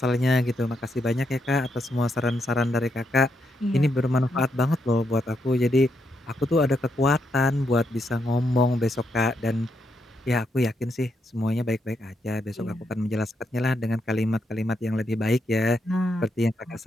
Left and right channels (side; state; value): both; normal; correlation 0.80